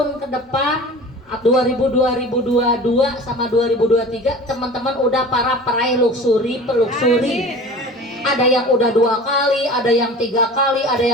ke depan 2022 sama 2023 teman-teman udah para peraih luxury, peluxury. Ada yang udah 2 kali, ada yang 3 kali, ada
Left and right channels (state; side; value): normal; both; correlation 0.39